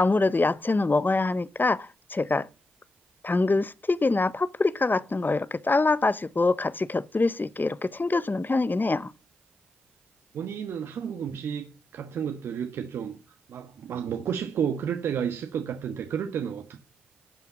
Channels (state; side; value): normal; both; correlation 0.85